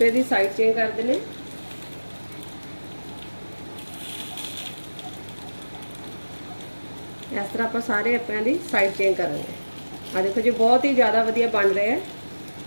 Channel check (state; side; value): inverted; both; correlation -1.00